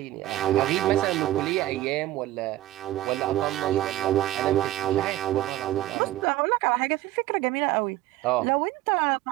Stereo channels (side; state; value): left; quieter; 15.3 dB